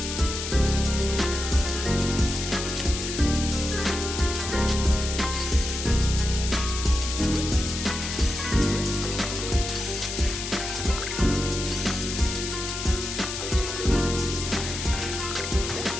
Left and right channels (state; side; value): noise; left; hiss, 5 dB below the sound